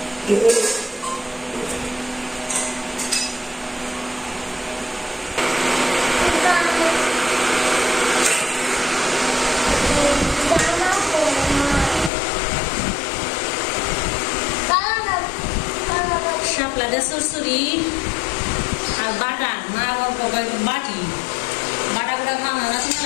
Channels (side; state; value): right; drops out; at 12.1 s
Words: শাপলা দিয়ে সুরসুরি আর বাটা মা বাবা বাটি বাটা গুলা খাওয়া না